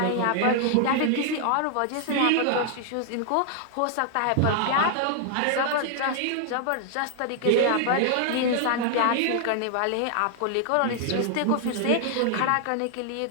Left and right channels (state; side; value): different; both; correlation 0.00